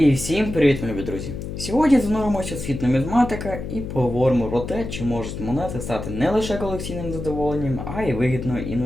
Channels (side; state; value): left; noise; hum, 7 dB below the sound